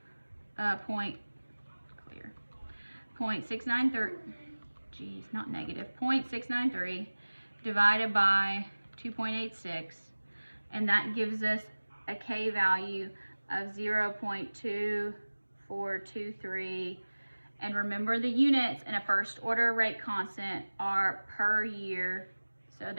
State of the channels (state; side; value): inverted; both; correlation -1.00